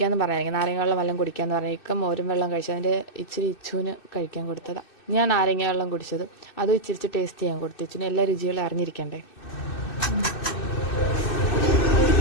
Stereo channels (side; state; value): right; late; 2.6 ms